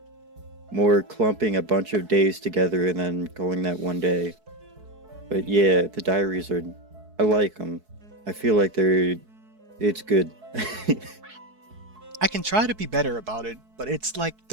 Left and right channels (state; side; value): late; left; 4.6 ms